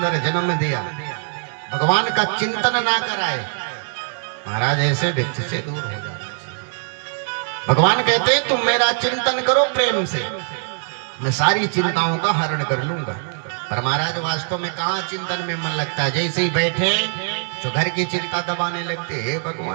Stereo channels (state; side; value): silent; left; 64 dB below the other